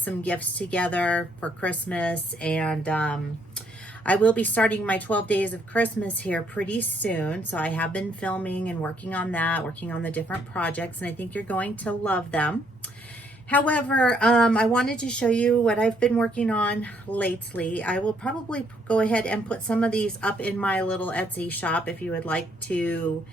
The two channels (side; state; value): both; normal; correlation 0.69